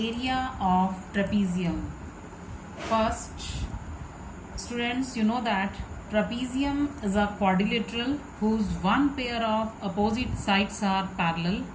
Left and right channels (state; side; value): identical; both; correlation 1.00